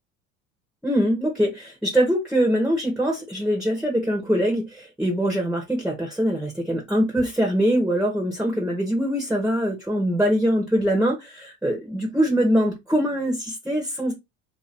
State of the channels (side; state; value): both; normal; correlation 0.82